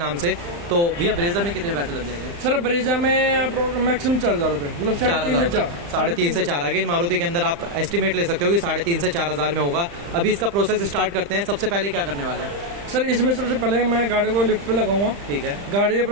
से। तो भैया ब्रेजा में कितने पैसे लग जाएंगे? सर ब्रेजा में मैक्सिमम 4,000 रुपये, मतलब 3,500 से 4। अगेन मारुति के अंदर आप एस्टिमेट ले सकते हो कि 3,500 से 4,000 में होगा। अभी इसका प्रोसेस स्टार्ट करते हैं। सबसे पहले क्या करने वाले हैं सर? इसमें सबसे पहले मैं गाड़ी को लिफ्ट पे लगाऊंगा। ठीक है। गाड़ी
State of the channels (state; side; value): late; left; 35 ms